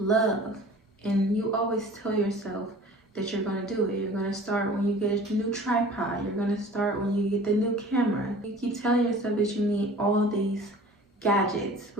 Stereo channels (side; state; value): both; normal; correlation 0.45